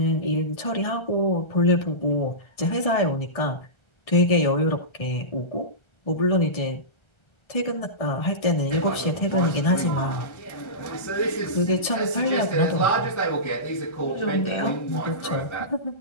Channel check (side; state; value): right; late; 1.3 ms